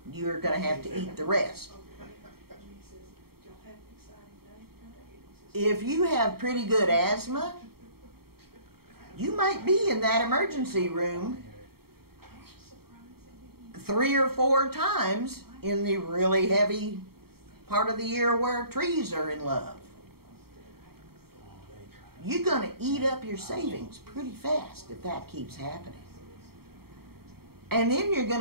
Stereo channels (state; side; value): late; left; 0.95 ms